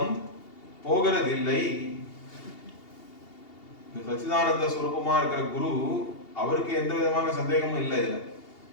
போகிறதில்லை. இந்த சச்சிதானந்த ஸ்வரூபமா இருக்கிற குரு, அவருக்கு எந்த விதமான சந்தேகமும் இல்லை. இதுல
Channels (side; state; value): right; late; 2.8 ms